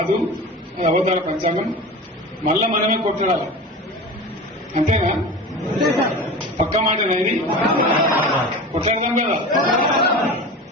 అది అవతార పంచాంగం. మళ్ళా మనమే కొట్లాడాలి, అంతేనా? పక్క మాట అనేది కొట్లాడతాం కదా.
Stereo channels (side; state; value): both; normal; correlation 0.32